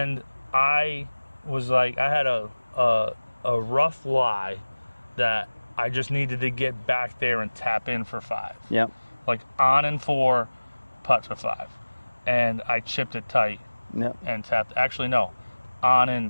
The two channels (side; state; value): both; inverted; correlation -1.00